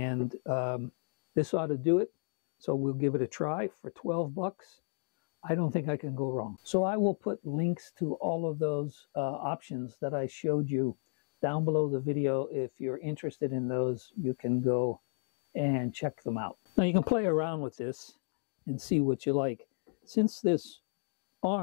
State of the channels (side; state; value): right; silent; 56 dB below the other